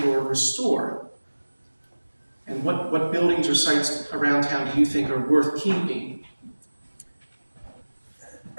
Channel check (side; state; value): both; inverted; correlation -1.00